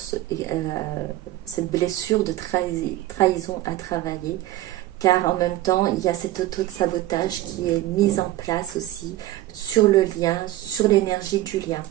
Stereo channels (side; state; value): left; quieter; 15.6 dB